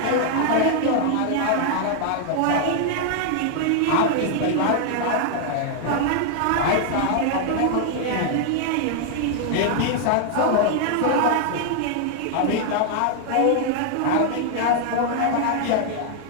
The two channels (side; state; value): both; different; correlation 0.00